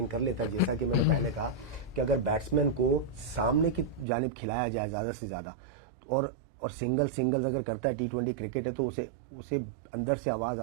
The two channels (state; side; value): drops out; left; at 4.0 s